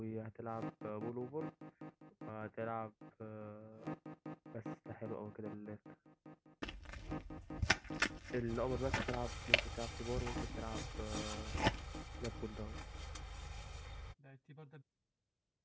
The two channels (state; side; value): identical; both; correlation 1.00